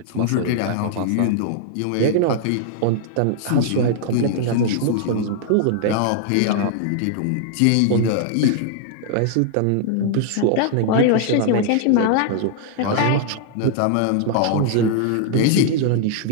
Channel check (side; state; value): both; different; correlation -0.01